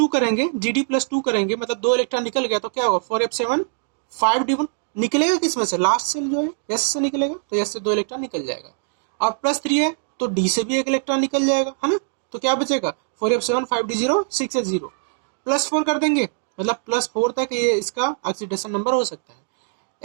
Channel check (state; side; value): silent; left; digital silence